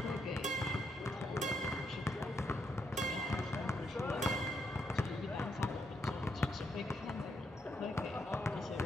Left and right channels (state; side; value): normal; both; correlation 0.78